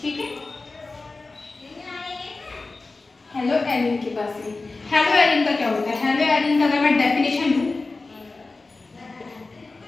ठीक है। हेलो एरिन के पास में हेलो एरिन का क्या होता है? हेलो एरिन का अगर मैं डेफिनेशन दूं,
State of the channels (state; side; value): quieter; right; 3.6 dB